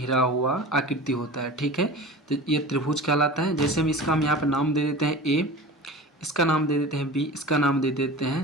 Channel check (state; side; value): normal; both; correlation 0.36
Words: हुआ आकृति होता है, ठीक है। तो ये त्रिभुज कहलाता है। जैसे हम यहाँ पे नाम दे देते हैं ए, इसका नाम दे देते हैं बी, इसका नाम दे देते हैं